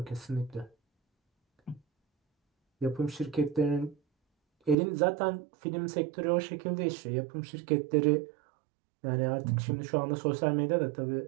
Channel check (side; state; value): left; drops out; at 4.8 s